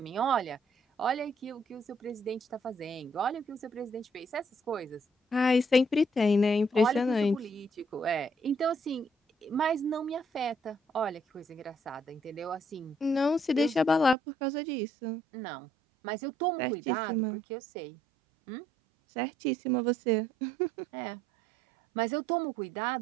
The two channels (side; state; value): left; drops out; at 14.2 s